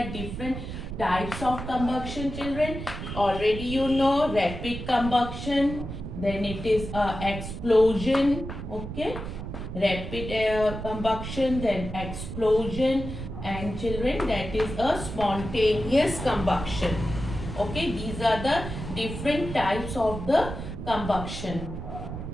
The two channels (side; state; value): right; noise; rumble, 7 dB below the sound